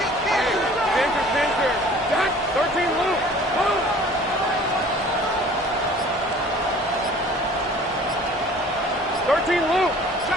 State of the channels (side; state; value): both; normal; correlation 0.49